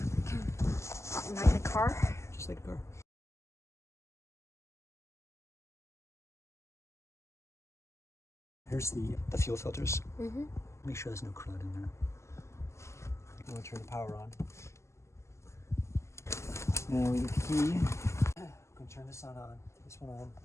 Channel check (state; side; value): late; right; 0.14 ms